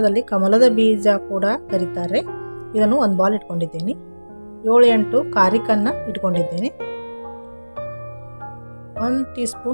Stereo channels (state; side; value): inverted; both; correlation -1.00